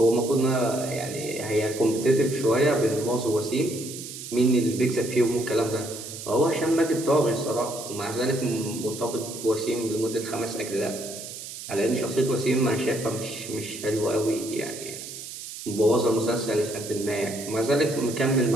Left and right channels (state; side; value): noise; right; hiss, 11 dB below the sound